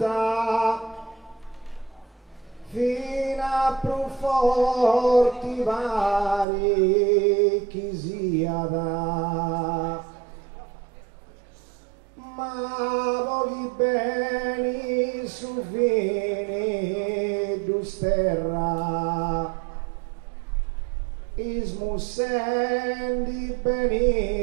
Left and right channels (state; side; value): drops out; left; at 6.5 s